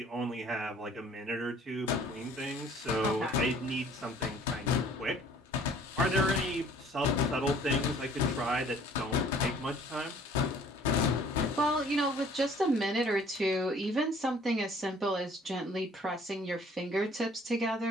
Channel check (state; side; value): normal; both; correlation 0.54